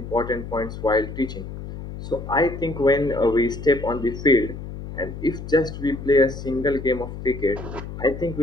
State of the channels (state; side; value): noise; left; hum, 10 dB below the sound